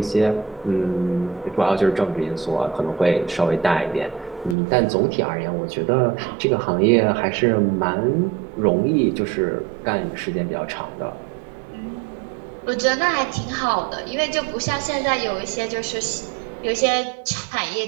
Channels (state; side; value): drops out; left; at 4.5 s